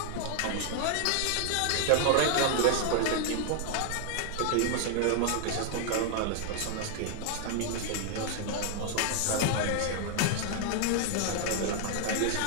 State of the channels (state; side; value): different; both; correlation 0.00